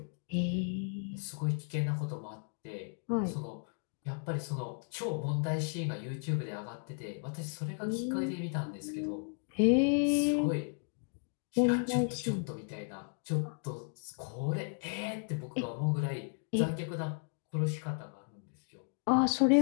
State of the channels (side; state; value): right; silent; 55 dB below the other